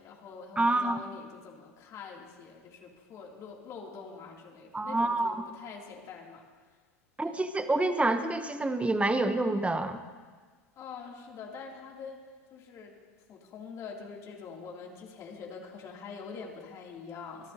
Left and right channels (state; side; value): normal; both; correlation 0.81